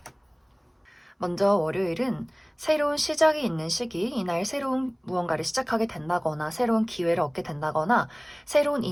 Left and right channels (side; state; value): both; identical; correlation 1.00